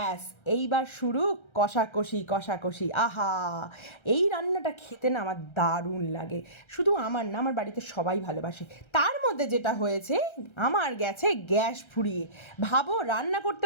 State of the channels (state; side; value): late; right; 1.3 ms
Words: এইবার শুরু কষাকষি। আহা, এই রান্নাটা খেতে না আমার দারুণ লাগে। শুধু আমার না, আমার বাড়িতে সবাই ভালোবাসে। তার মধ্যে যেটা হয়েছে, আমার গেছে গ্যাস ফুরিয়ে। ভাবো, রান্না